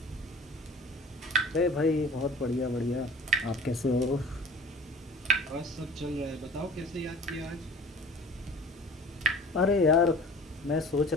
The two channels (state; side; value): normal; both; correlation 0.43